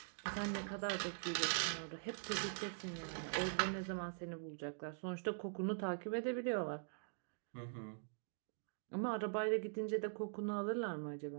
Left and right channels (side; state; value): left; silent; digital silence